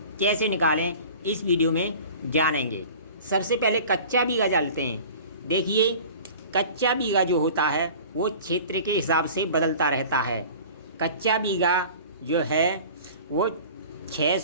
कैसे निकालें, इस वीडियो में जानेंगे। सबसे पहले कच्चा बीघा जानते हैं। देखिए, कच्चा बीघा जो होता है वो क्षेत्र के हिसाब से बदलता रहता है। कच्चा बीघा जो है वो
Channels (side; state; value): both; inverted; correlation -0.41